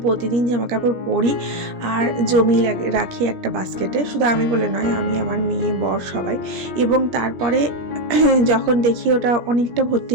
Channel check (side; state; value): left; late; 17 ms